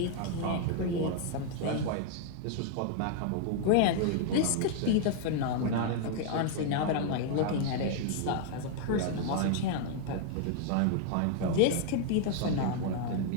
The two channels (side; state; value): both; different; correlation 0.00